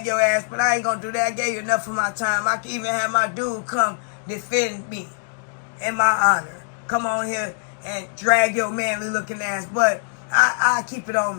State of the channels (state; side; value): silent; right; digital silence